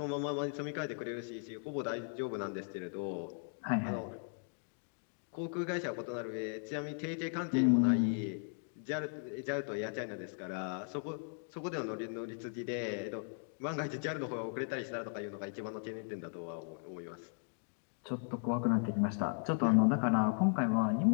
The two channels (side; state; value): right; silent; 53 dB below the other